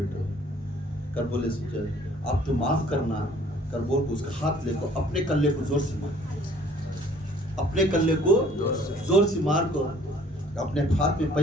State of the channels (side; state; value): both; normal; correlation 0.56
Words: کر بولے سوچے آپ تو معاف کرنا, کر بول کو اس کا ہاتھ لے کو اپنے کلے کو زور سے مار, اپنے کلے کو زور سے مار کو. اپنے ہاتھ میں